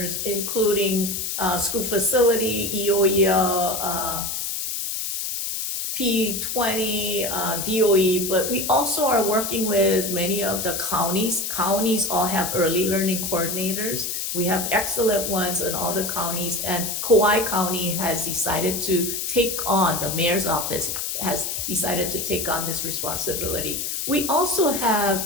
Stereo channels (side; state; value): left; noise; hiss, 3 dB below the sound